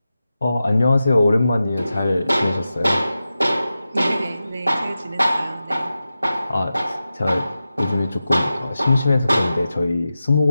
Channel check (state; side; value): inverted; both; correlation -0.93